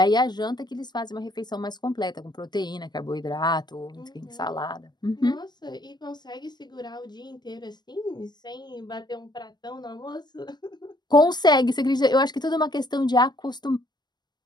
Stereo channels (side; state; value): right; late; 0.21 ms